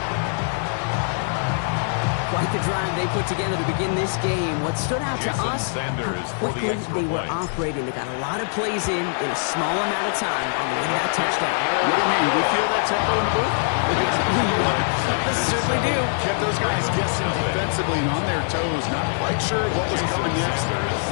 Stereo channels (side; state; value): right; silent; digital silence